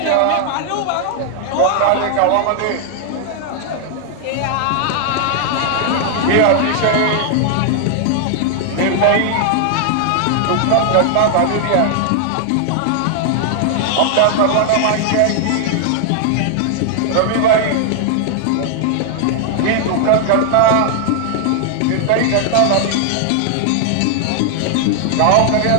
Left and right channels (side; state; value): both; different; correlation 0.00